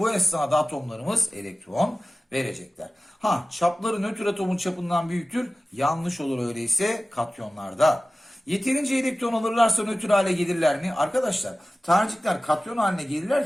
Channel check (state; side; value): normal; both; correlation 0.96